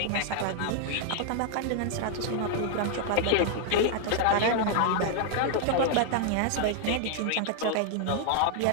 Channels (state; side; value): different; both; correlation 0.00